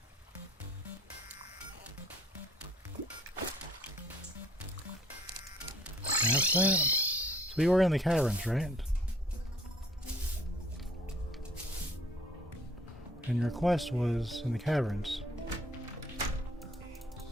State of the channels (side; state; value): both; normal; correlation 0.58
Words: That's that. So we were in the caverns, right? And your quest was in the caverns.